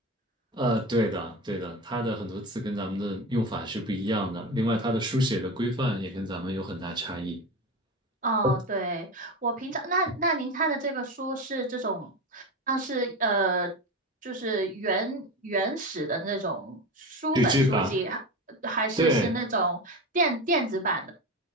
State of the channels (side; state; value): both; normal; correlation 0.23